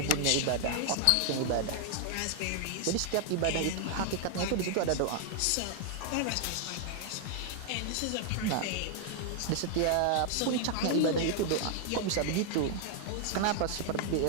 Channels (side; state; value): both; different; correlation 0.00